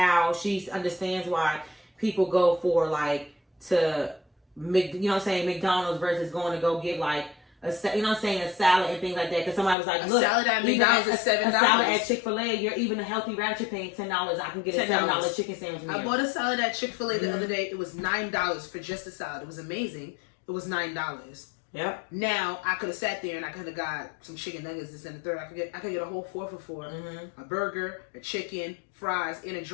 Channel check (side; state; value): right; drops out; at 9.8 s